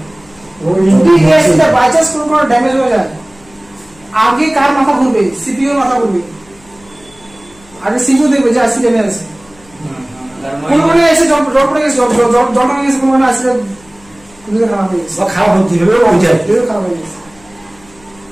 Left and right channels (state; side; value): noise; left; hum, 27 dB below the sound